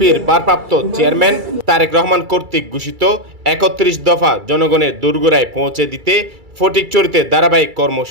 ভারপ্রাপ্ত চেয়ারম্যান তারেক রহমান কর্তৃক ঘোষিত ৩১ দফা জনগণের দোরগোড়ায় পৌঁছে দিতে ফটিকছড়িতে ধারাবাহিক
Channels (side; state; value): left; late; 2.3 ms